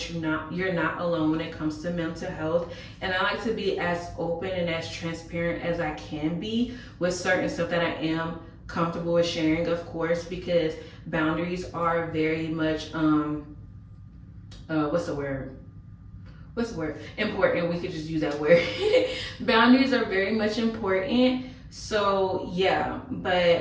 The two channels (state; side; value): identical; both; correlation 1.00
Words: you're not alone when it comes to mental health. And I like to be as open and as transparent as I can be with certain stuff that I am comfortable with sharing, of course, because boundaries are very much important. We could just use that word. Boundaries are very much important. So yeah,